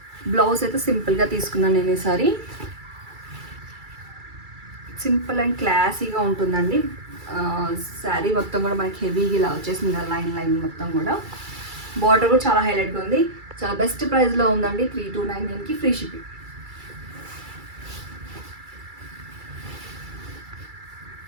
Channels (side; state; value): left; late; 2.3 ms